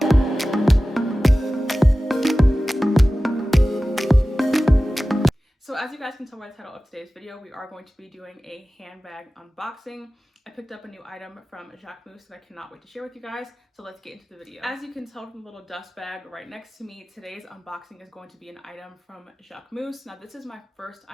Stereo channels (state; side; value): normal; both; correlation 0.96